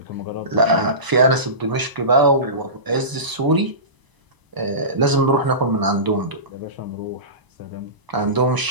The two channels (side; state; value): left; late; 1.0 ms